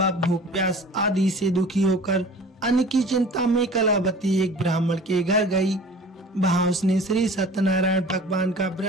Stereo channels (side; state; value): both; normal; correlation 0.44